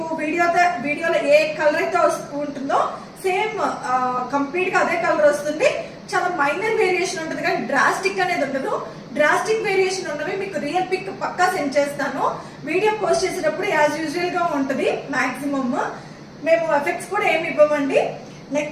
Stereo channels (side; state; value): both; identical; correlation 1.00